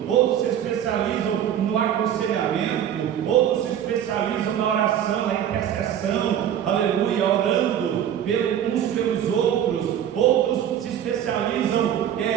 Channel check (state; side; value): quieter; left; 10.0 dB